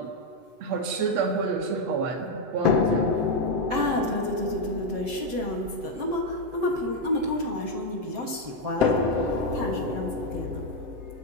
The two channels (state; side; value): late; left; 7.7 ms